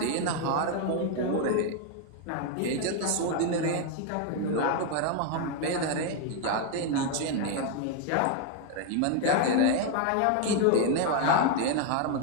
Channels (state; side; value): different; both; correlation 0.01